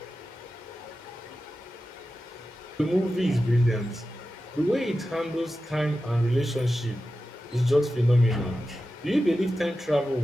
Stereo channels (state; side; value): normal; both; correlation 0.93